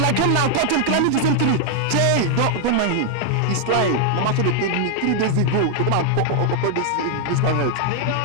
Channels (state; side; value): different; both; correlation 0.00